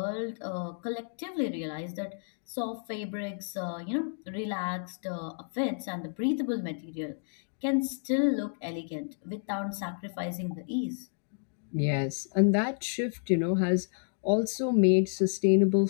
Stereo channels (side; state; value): right; silent; digital silence